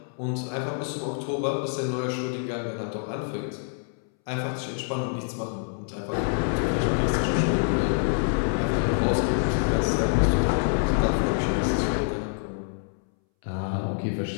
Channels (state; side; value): silent; right; 61 dB below the other